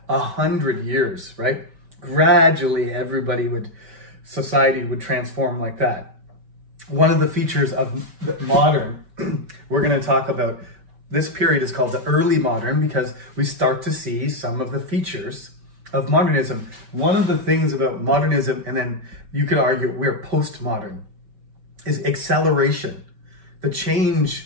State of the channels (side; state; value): left; late; 5.2 ms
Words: 100 years, right? Gradually, society would transform like that. One of the features of the modern, we're going to talk about, this period is called the early modern because we start to see some of the features of modernism. One of the things about modernism, and then you could argue we're postmodern, is acceleration. The